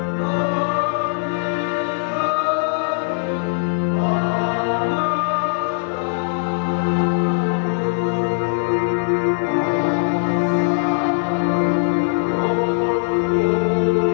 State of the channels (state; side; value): silent; right; digital silence